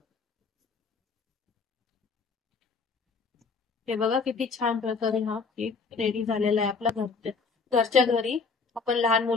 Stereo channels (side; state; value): right; quieter; 4.8 dB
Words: हे बघा किती छान प्रकारे हा केक रेडी झालेला आहे आपला. घरच्या घरी आपण लहान